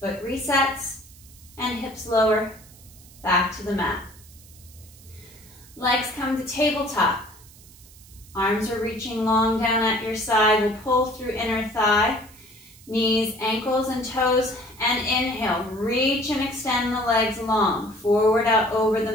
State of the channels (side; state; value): right; noise; hiss, 23 dB below the sound